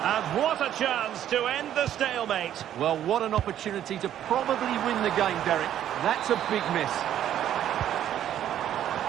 And what a chance to end the stalemate. Well, what an opportunity to probably win the game, Derek. That's a big miss.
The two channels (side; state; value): left; quieter; 11.0 dB